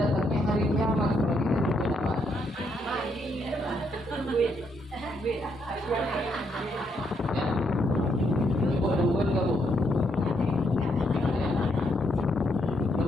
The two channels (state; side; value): normal; both; correlation 0.76